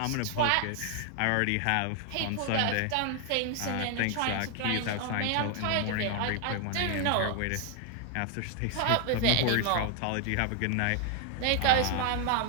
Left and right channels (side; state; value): both; different; correlation 0.00